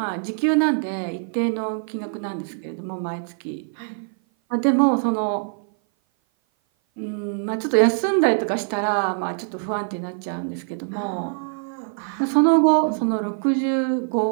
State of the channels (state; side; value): silent; left; 57 dB below the other